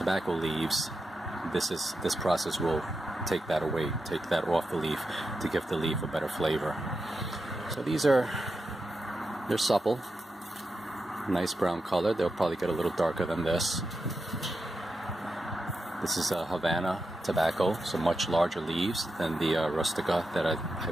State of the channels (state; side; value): normal; both; correlation 0.88